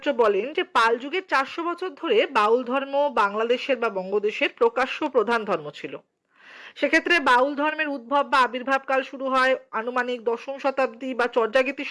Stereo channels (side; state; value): both; identical; correlation 1.00